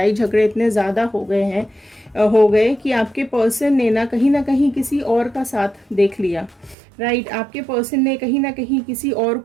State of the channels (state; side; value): drops out; left; at 6.8 s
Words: झगड़े इतने ज़्यादा हो गए कि आपके पर्सन ने ना कहीं किसी और का साथ देख लिया। राइट, आपके पर्सन ने कहीं ना कहीं किसी और